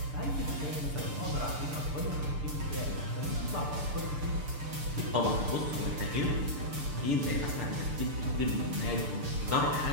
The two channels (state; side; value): late; left; 6.8 ms